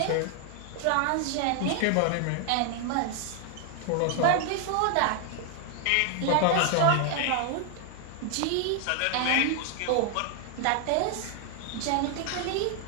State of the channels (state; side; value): different; both; correlation 0.00